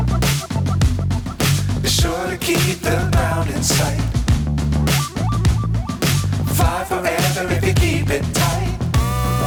Be sure to keep the ground in sight. Fly fly forever if you keep it tight.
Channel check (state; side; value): identical; both; correlation 1.00